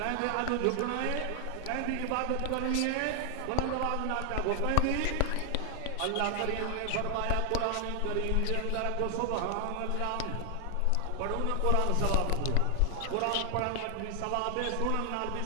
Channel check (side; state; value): both; different; correlation 0.00